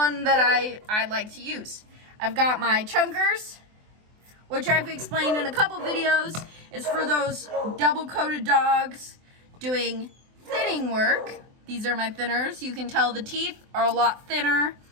that I like to use. I've got my chunkers, which I've explained in a couple videos, is for those double-coated dogs doing thinning work. These are my thinners. You can tell the teeth are a lot thinner.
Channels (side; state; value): left; late; 24 ms